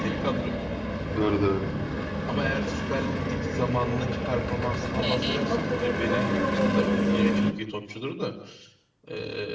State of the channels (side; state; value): both; identical; correlation 1.00